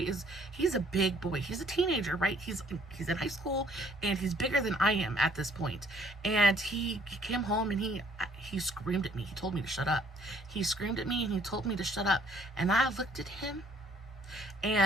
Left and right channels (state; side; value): normal; both; correlation 0.61